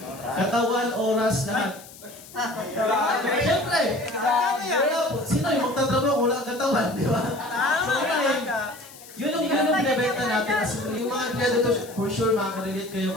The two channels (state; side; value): noise; left; hiss, 19 dB below the sound